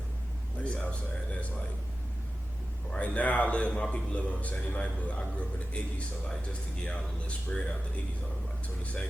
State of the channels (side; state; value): both; normal; correlation 0.94